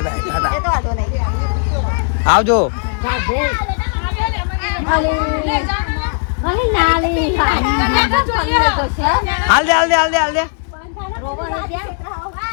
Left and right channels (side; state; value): right; silent; digital silence